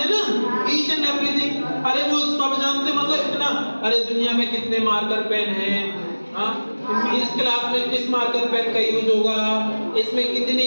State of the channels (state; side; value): inverted; both; correlation -1.00